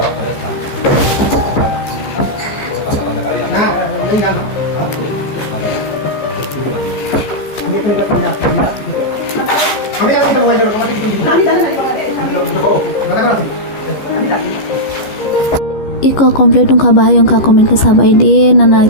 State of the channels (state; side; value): late; right; 14 ms